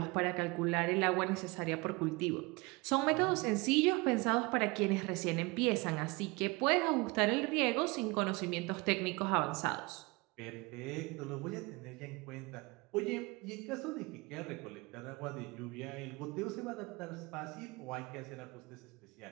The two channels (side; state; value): left; quieter; 25.4 dB